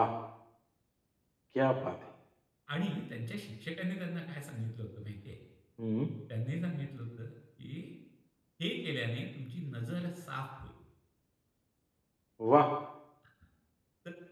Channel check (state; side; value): identical; both; correlation 1.00